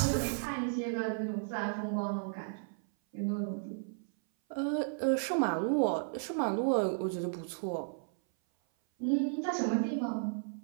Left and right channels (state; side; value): silent; left; 55 dB below the other